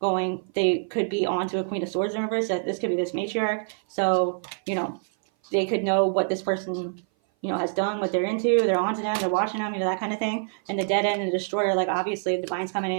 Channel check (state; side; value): silent; left; 58 dB below the other